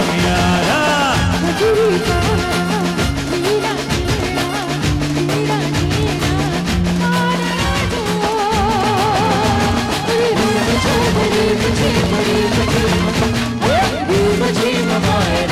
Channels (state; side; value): identical; both; correlation 1.00